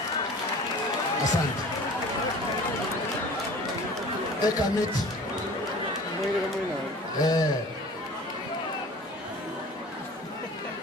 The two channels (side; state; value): both; normal; correlation 0.43